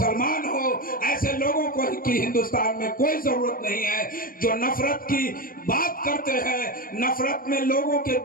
हो। ऐसे लोगों को की हिंदुस्तान में कोई जरूरत नहीं है जो नफरत की बात करते हैं, नफरत में लोगों के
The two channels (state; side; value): late; right; 0.41 ms